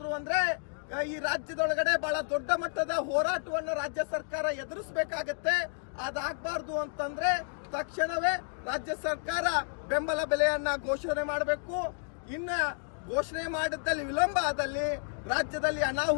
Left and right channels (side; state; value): right; silent; digital silence